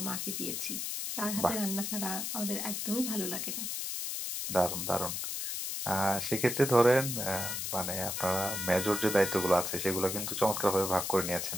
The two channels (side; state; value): left; noise; hiss, 3 dB below the sound